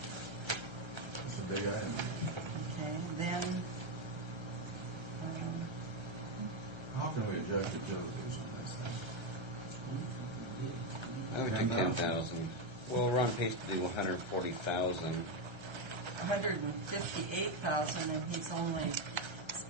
a big item. Okay, then, How can we adjust utilities on this thing? I would think 10,000. Well, we're on pace to do 140,000. 158,000 and he's only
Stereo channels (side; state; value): left; late; 1.3 ms